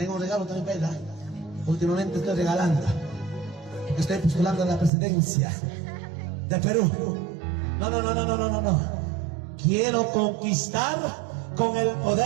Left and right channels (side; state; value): left; drops out; at 4.9 s